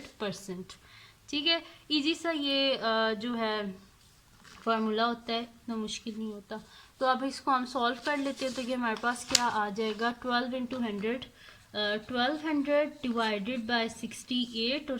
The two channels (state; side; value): identical; both; correlation 1.00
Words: ठीक है, इजी सा ये जो है फार्मूला होता है, इतना मुश्किल नहीं होता। तो अब इसको हम सॉल्व कर लेते हैं, तो ये हमारे पास क्या आ जाएगा 12 × 100, 1200 डिवाइडेड बाय 68 और